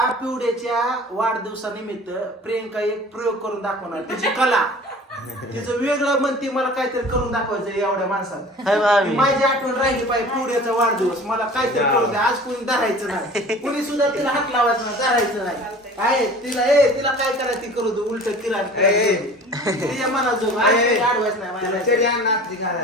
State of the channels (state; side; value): normal; both; correlation 0.43